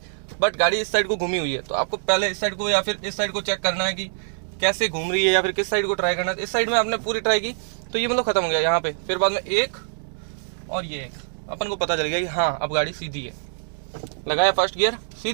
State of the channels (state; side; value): silent; left; digital silence